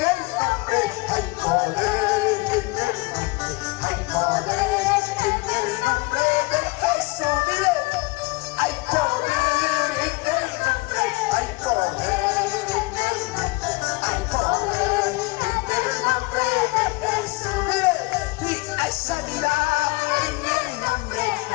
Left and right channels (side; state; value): right; quieter; 25.1 dB